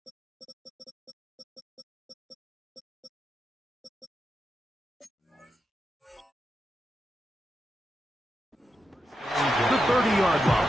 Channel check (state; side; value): normal; both; correlation 0.87